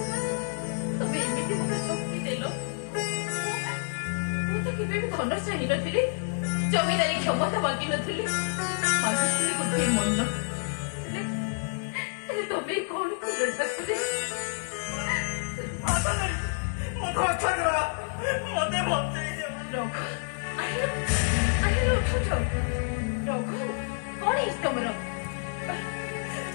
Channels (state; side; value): silent; right; 59 dB below the other